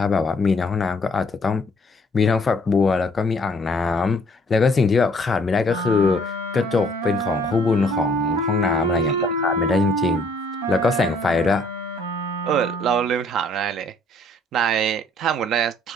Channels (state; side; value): normal; both; correlation 0.61